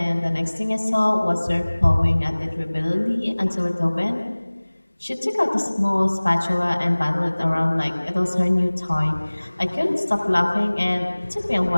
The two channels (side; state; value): both; inverted; correlation -1.00